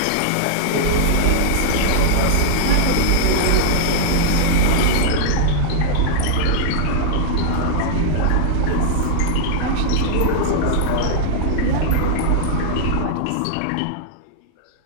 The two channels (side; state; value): both; different; correlation -0.01